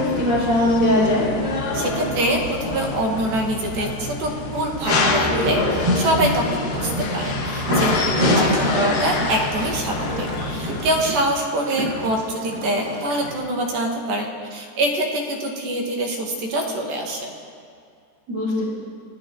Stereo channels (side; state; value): left; late; 14 ms